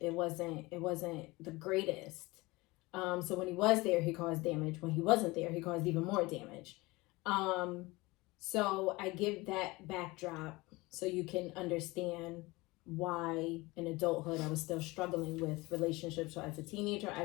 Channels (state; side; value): quieter; right; 22.4 dB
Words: wasn't the greatest. So when he was there, he caused damage. When he wasn't there, he caused even more damage. So I give that backdrop so you can understand why in adulthood I was still struggling with relationships. So as a teenager, I